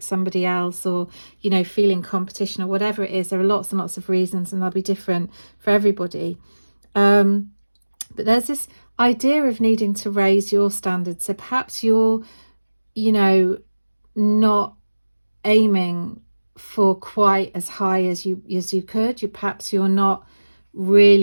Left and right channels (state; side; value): inverted; both; correlation -1.00